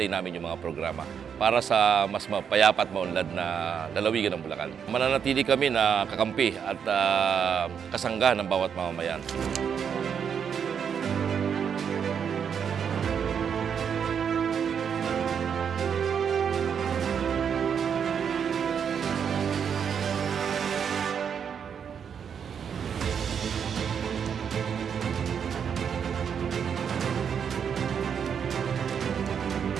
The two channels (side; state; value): left; quieter; 7.4 dB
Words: namin yung mga programa para sa mas mapayapa at maunlad na lalawigan ng Bulacan. Mananatili kami na kakampi at kasangga ng bawat mamamayan.